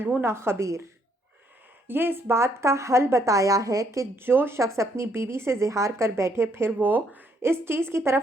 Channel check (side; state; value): both; normal; correlation 0.70